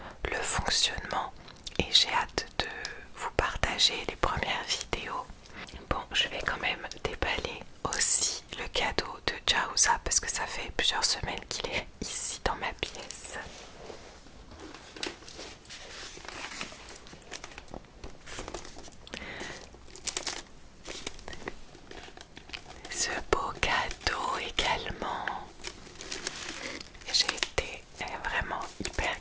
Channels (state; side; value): identical; both; correlation 1.00